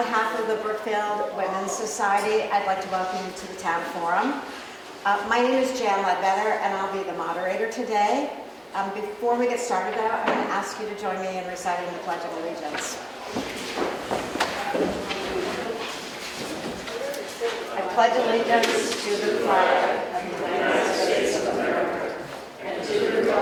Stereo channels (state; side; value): identical; both; correlation 1.00